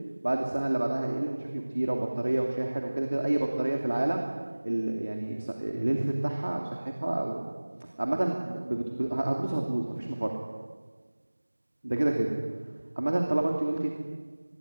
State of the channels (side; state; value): both; inverted; correlation -1.00